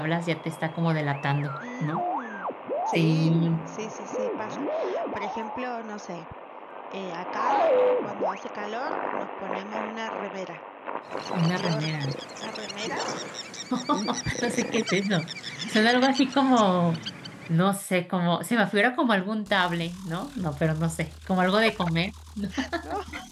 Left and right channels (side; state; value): both; identical; correlation 1.00